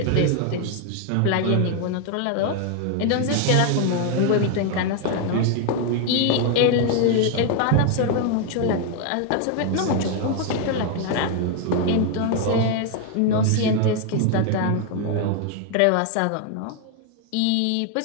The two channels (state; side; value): different; both; correlation 0.00